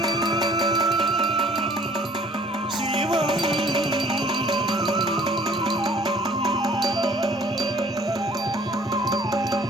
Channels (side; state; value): both; normal; correlation 0.55